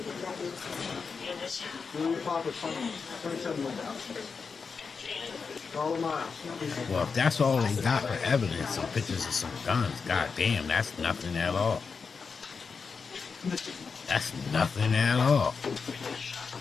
Well, if that's all they got for evidence, some pictures of some guns, goddamn, that's nothing at all. That's nothing at all.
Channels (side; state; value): right; quieter; 5.2 dB